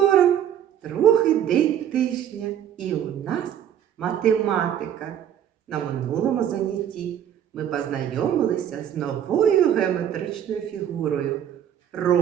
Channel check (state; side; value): quieter; left; 10.0 dB